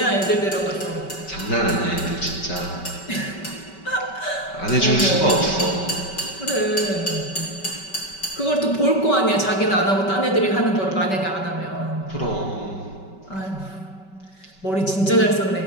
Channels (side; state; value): right; late; 5.2 ms